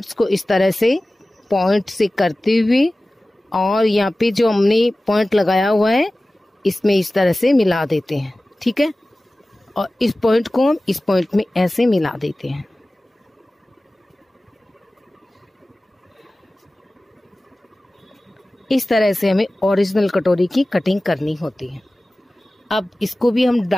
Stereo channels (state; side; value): normal; both; correlation 0.97